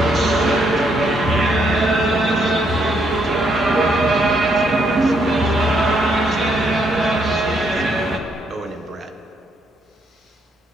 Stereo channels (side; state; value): both; normal; correlation 0.73